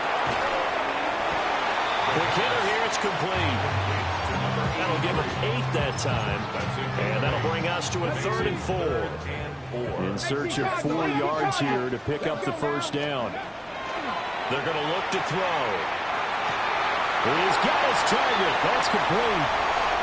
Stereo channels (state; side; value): identical; both; correlation 1.00